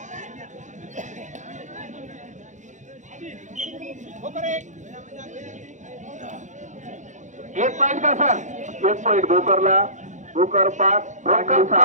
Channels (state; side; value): late; left; 0.35 ms